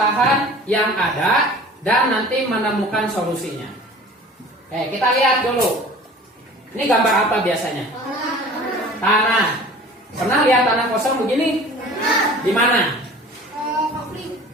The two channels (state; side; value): normal; both; correlation 0.44